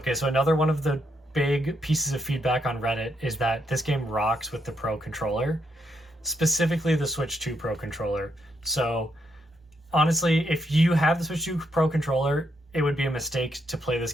so another one of the big pieces of feedback on Reddit is that this game rocks with the Pro controller, specifically the Switch 2 Pro controller. So honestly, if you have the Switch 2 Pro controller, it would be a mistake to play this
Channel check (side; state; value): both; normal; correlation 0.78